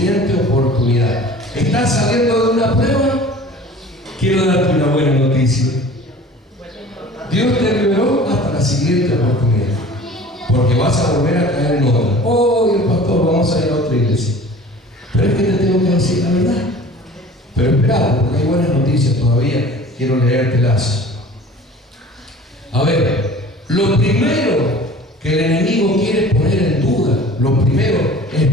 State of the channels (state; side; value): normal; both; correlation 0.44